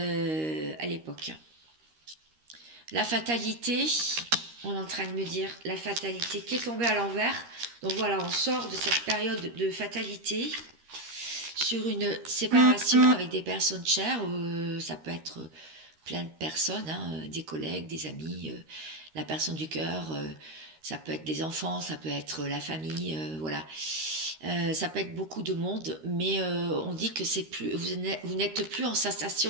l'époque. La fatalité, on est en train de me dire la fatalité qui est tombée à l'envers. Donc voilà, on sort de cette période de fatalité sur une séparation avec des personnes chères. Ça peut être plein de personnes, hein, des collègues, des amis, la personne du cœur. Ça peut être des enfants, ça peut être la famille, voilà. Ça peut être beaucoup de monde, mais on dit que c'est plus, vous n'êtes plus en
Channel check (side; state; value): left; late; 13 ms